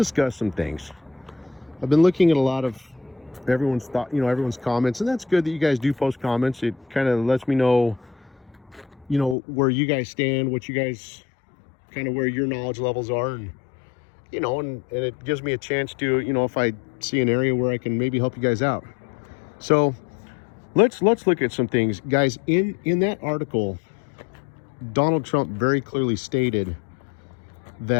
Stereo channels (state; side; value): drops out; right; at 9.3 s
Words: some things. I've been looking at a lot of everyone's thought, everyone's comments, and that's good that you guys do post comments. It kind of lets me know, where you guys stand, what you guys kind of where your knowledge levels are, and and it gives me a chance to, if I see an area where I can maybe help you guys out. So let's look at some things, guys. In that article, Donald Trump very clearly stated